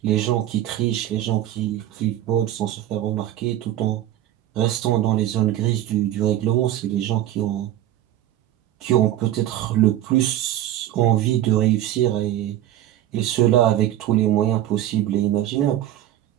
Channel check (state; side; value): quieter; left; 12.7 dB